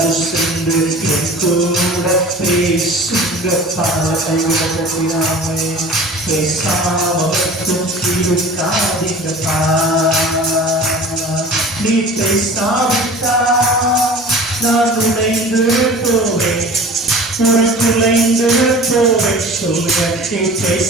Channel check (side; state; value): both; normal; correlation 0.41